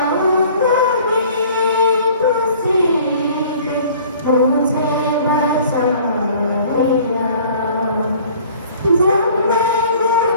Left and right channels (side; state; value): both; inverted; correlation -0.50